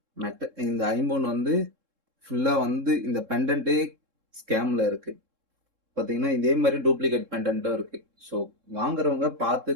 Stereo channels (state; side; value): late; left; 3.7 ms